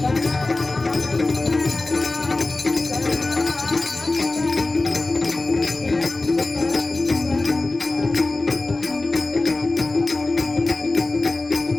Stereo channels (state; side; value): quieter; right; 3.1 dB